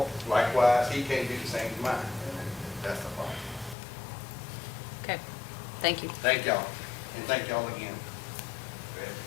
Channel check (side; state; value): right; drops out; at 3.8 s